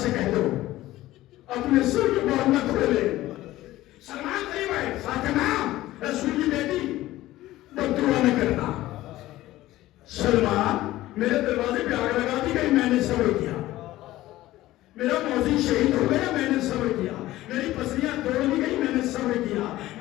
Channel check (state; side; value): quieter; right; 16.1 dB